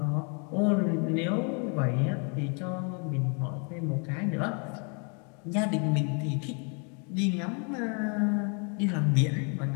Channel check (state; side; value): quieter; right; 37.3 dB